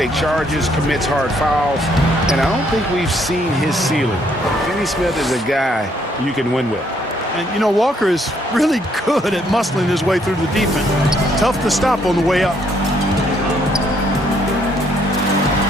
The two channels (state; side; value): normal; both; correlation 0.69